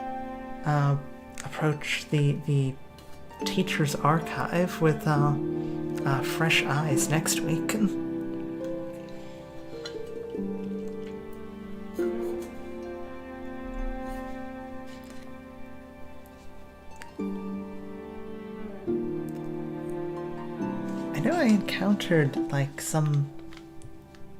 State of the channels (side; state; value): both; identical; correlation 1.00